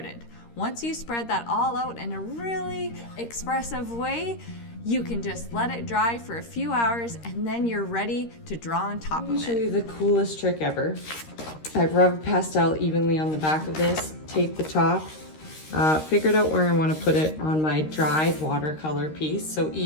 Once you spread that all out in a really expressive way, you can just let it dry for a few hours and then you're ready to draw on top of it. Let me show you the coolest trick ever. I've rubbed pastel evenly on the back of this, taped the top, figured out where I want to put it on my dried watercolor piece. So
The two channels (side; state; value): right; late; 13 ms